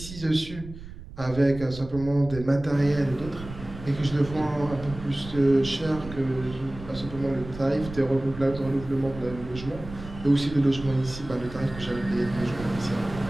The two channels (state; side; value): noise; right; rumble, 13 dB below the sound